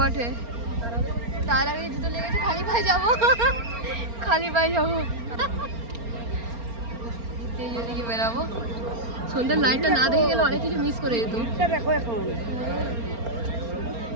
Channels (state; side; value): late; left; 4.3 ms